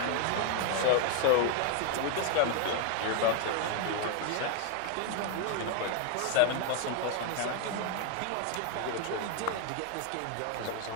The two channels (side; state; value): both; different; correlation 0.01